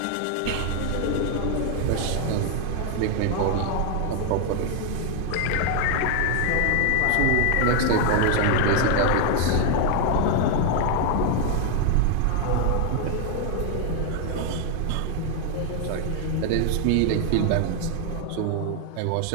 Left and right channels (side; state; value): both; different; correlation 0.00